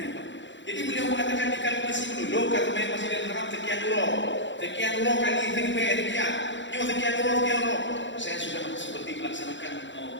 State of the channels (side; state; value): right; late; 0.54 ms